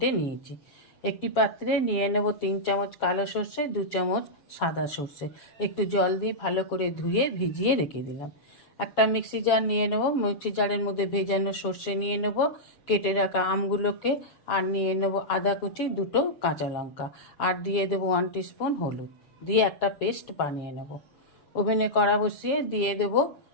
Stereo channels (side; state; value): right; late; 7.1 ms